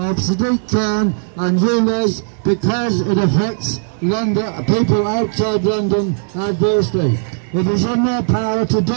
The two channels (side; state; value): left; silent; digital silence